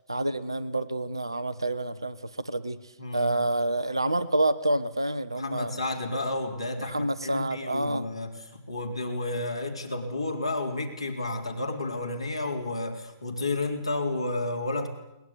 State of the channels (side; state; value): both; inverted; correlation -0.79